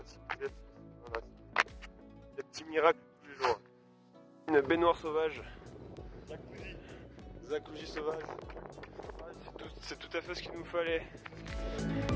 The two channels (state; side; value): identical; both; correlation 1.00